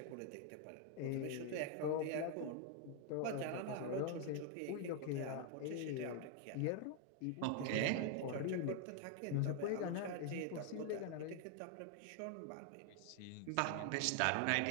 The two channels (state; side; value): different; both; correlation 0.00